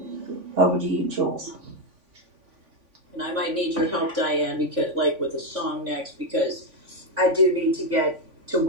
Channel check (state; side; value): late; left; 3.5 ms